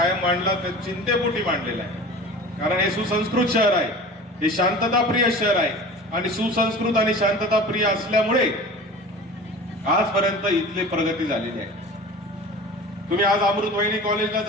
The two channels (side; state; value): both; normal; correlation 0.38